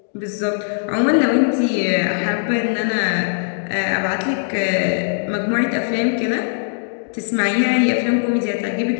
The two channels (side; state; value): right; silent; digital silence